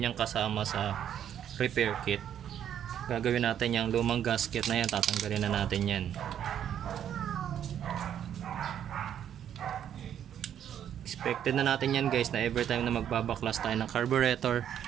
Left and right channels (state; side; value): quieter; left; 9.8 dB